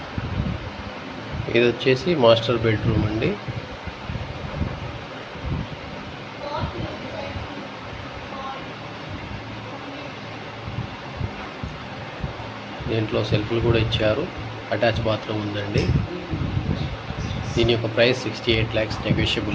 ఇది వచ్చేసి మాస్టర్ బెడ్రూమ్ అండి. దీంట్లో సెల్ఫ్లు కూడా ఇచ్చారు. అటాచ్ బాత్రూమ్ ఉందండి. దీని యొక్క ప్రైస్ 68 lakhs నెగోషియబుల్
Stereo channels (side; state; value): both; identical; correlation 1.00